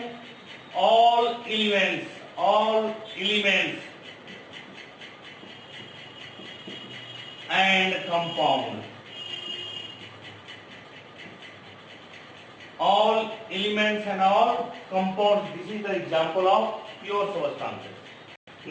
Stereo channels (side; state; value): both; identical; correlation 1.00